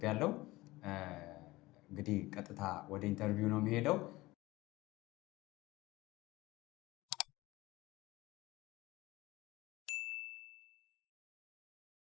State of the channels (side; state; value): right; quieter; 19.6 dB